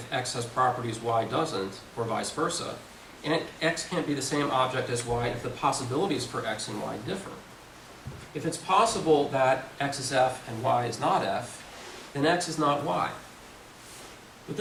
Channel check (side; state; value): both; identical; correlation 1.00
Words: x has properties y doesn't, or vice versa, and x can't be the same object as y if the possibilities for x and y differ. If it's possible that x is f and y is not f, then x is not y. But